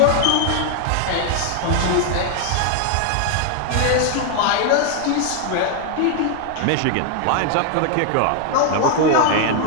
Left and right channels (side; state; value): both; different; correlation 0.00